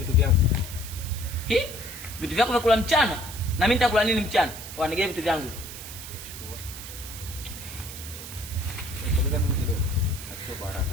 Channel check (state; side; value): noise; right; hiss, 11 dB below the sound